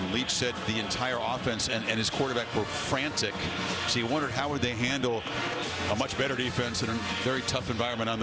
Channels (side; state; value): both; identical; correlation 1.00